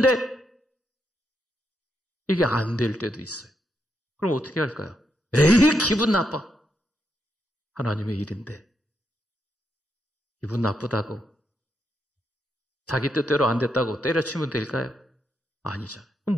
이게 안 될 때도 있어요. 그럼 어떻게 할까요? 에이, 기분 나빠. 하나님의 일인데 기분 나쁘다고 자기 뜻대로 안 됐다고 때려치면 될까요? 아니잖아요. 그럼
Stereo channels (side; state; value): both; normal; correlation 0.80